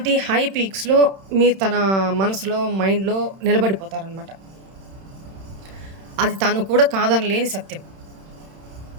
హై పీక్స్లో మీరు తన మనసులో, మైండ్లో నిలబడిపోతారనమాట. అది తను కూడా కాదనలేని సత్యం.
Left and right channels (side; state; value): left; late; 31 ms